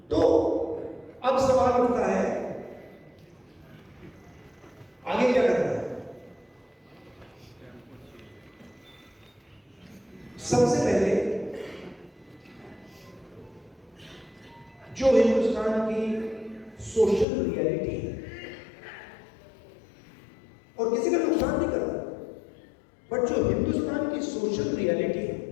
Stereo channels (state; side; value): drops out; right; at 17.2 s